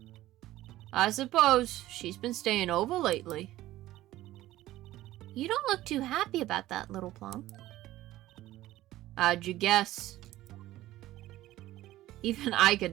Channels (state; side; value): quieter; left; 15.5 dB